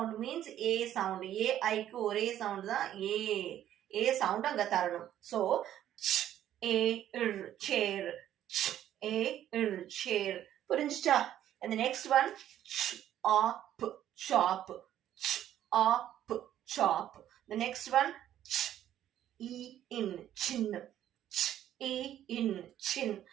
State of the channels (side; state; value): left; quieter; 11.5 dB